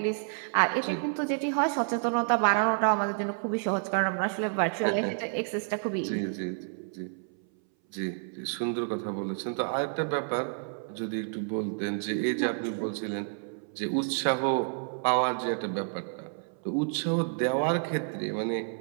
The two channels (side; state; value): left; silent; 58 dB below the other